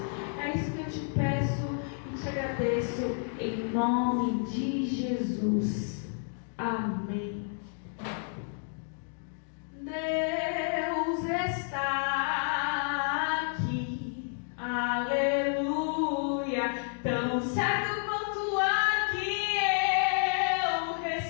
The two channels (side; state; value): right; silent; 56 dB below the other